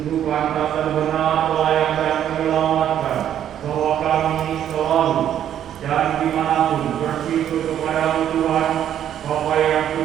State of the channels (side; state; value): left; quieter; 10.3 dB